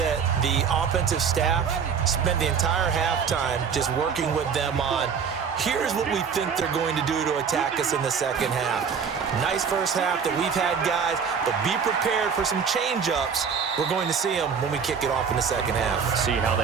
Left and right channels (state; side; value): quieter; left; 6.5 dB